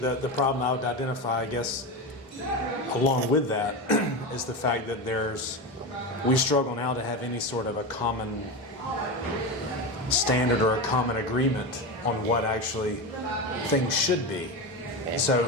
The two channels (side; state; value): both; normal; correlation 0.20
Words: problem I would identify, I guess, along with that, is the fact that we struggle now to have any sort of a common standard or a common agreement on what actually things should be.